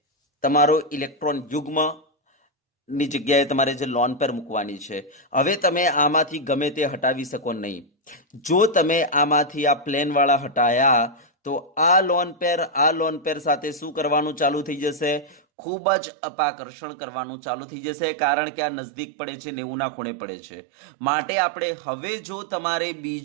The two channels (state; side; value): drops out; left; at 15.4 s